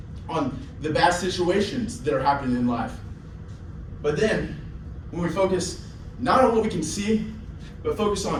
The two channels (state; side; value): identical; both; correlation 1.00